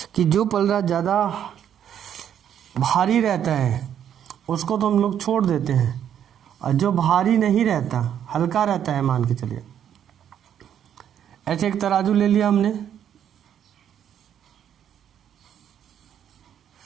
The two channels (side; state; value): left; quieter; 9.5 dB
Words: कि जो पलड़ा ज़्यादा भारी रहता है उसको तो हम लोग छोड़ देते हैं, और जो भारी नहीं रहता, हल्का रहता है, मान के चलिए ऐसे एक तराजू ले लिया हमने,